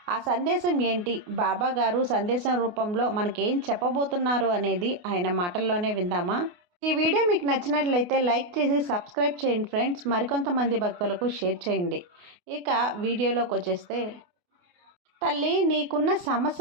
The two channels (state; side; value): late; left; 28 ms